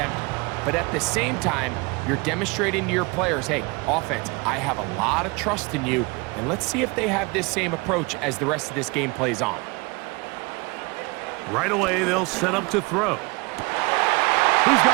but at the same time, you're demonstrating to your players, hey, offense, I have a lot of trust in you, and let's see if they have this same approach as the rest of this game plays on. Right away, they'll set up to throw. He's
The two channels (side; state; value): left; quieter; 27.2 dB